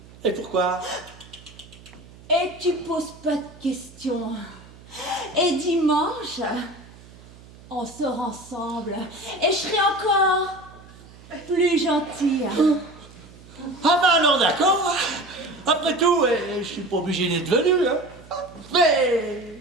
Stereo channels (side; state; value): right; noise; hum, 22 dB below the sound